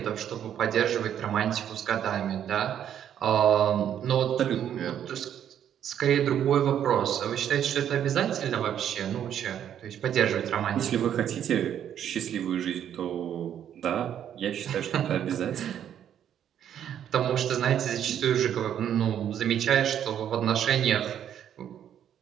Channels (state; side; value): quieter; left; 9.8 dB